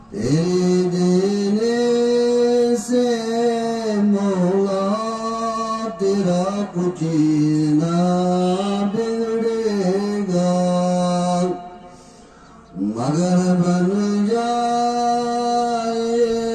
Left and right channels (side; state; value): both; identical; correlation 1.00